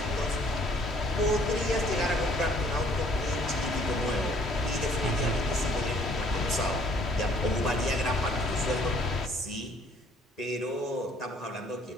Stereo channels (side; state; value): both; normal; correlation 0.60